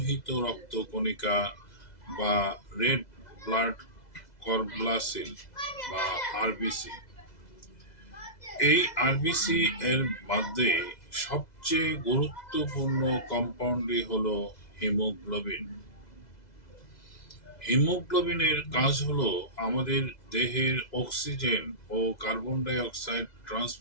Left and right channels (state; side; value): late; right; 2.0 ms